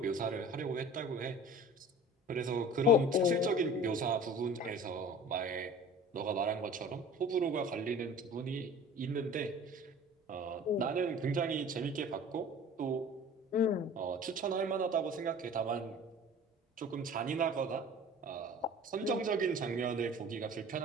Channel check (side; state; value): both; normal; correlation 0.43